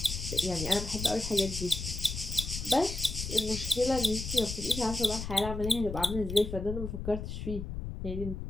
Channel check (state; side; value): noise; left; rumble, 6 dB below the sound